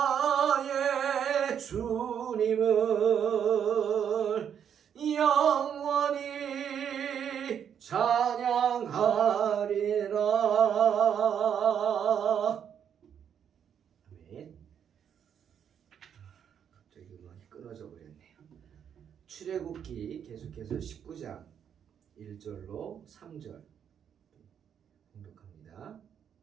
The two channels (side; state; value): left; quieter; 8.4 dB